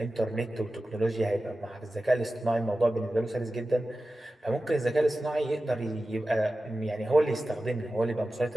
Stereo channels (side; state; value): both; normal; correlation 0.94